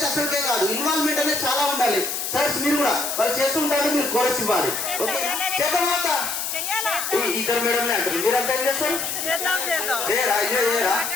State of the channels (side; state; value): left; noise; hiss, 3 dB below the sound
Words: అసలుకే కాదు. ఇన్వాల్వ్మెంట్ అనేది చాలా ఉండాలి. సార్ మీరు కూడా వాళ్ళు చేస్తూ ఉంటారు, మీరు కోరస్ ఇవ్వాలి. ఓకే చేద్దామా? ఇద్దరు మేడంలే అంటారు, మీరంతా ఏం చేస్తారు? చేయరా? అయ్యో చేయరా?